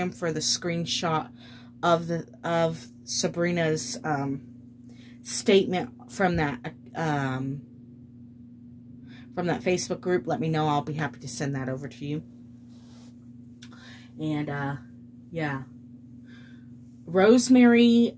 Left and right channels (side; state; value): both; identical; correlation 1.00